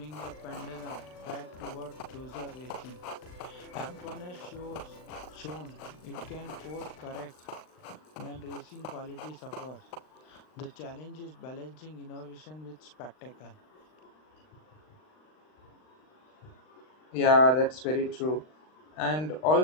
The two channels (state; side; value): late; right; 39 ms